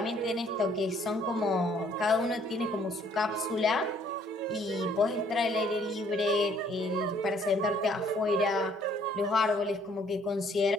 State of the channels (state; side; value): normal; both; correlation 0.63